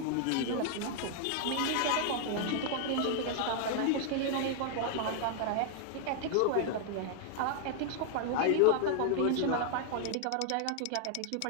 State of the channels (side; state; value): both; different; correlation 0.00